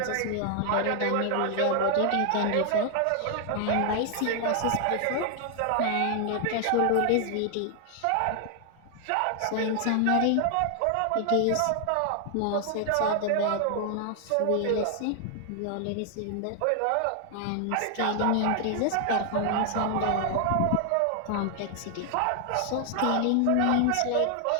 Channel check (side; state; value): both; different; correlation 0.00